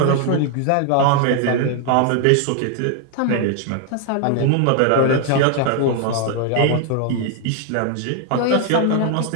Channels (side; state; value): both; different; correlation 0.00